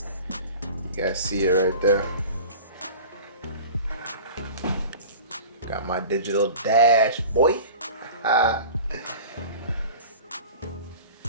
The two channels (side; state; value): both; inverted; correlation -0.38